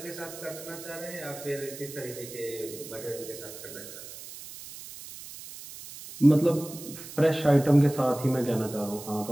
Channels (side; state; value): right; noise; hiss, 13 dB below the sound